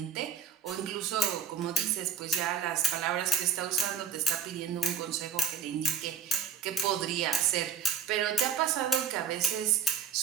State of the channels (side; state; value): left; quieter; 6.6 dB